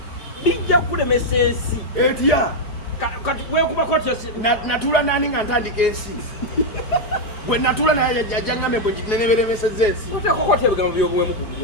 bijja kukulemesa ensi etya kati weekubako natuula nani nga ntandika ensi bwe natuula naye ajja ngambe bwe neneberemeseza ensi otekokoti ebigambo byobuwemu ku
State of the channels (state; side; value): late; right; 4.7 ms